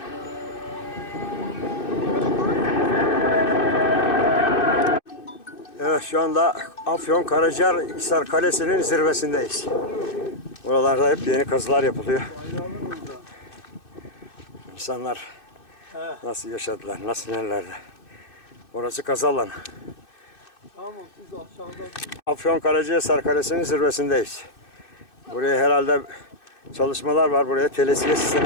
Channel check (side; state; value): right; late; 2.6 ms